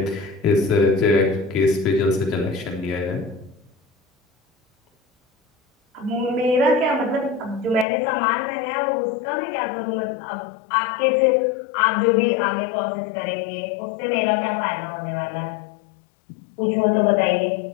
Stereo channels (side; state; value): right; drops out; at 7.9 s